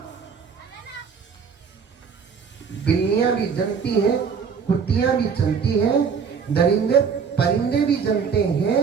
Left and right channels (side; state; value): left; quieter; 6.2 dB